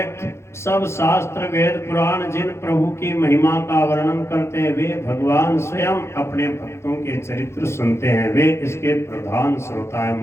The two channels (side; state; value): right; late; 0.13 ms